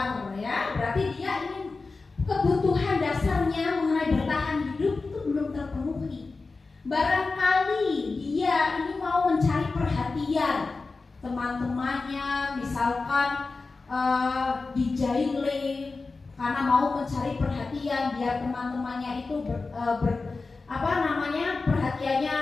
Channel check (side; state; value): right; quieter; 3.9 dB